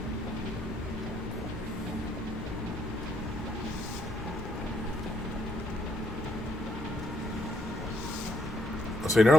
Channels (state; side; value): normal; both; correlation 0.71